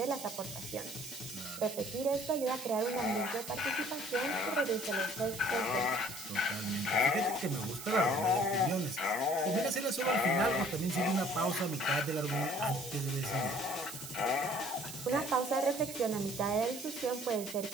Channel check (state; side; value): noise; right; hiss, 11 dB below the sound